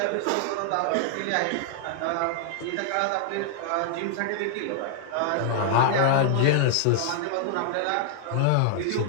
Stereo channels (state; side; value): different; both; correlation -0.01